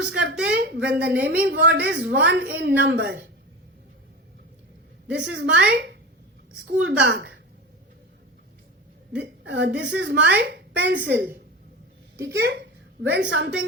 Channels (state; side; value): normal; both; correlation 0.28